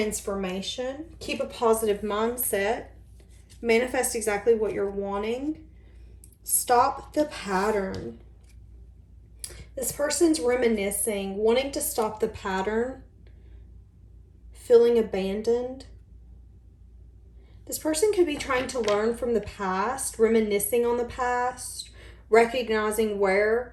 Keep a positive mindset. Manifest exactly what you're wanting. Stop the pattern. This person's reminiscing, wanting to stop the pattern, feeling abandoned. This person could be trying to learn from the past, reminiscing on the past, recognizing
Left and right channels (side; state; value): both; identical; correlation 1.00